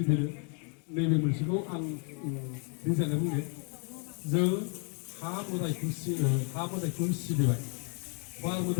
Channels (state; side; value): quieter; right; 39.8 dB